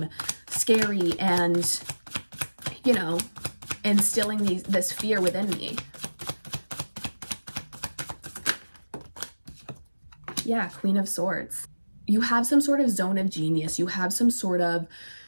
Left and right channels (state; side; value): inverted; both; correlation -1.00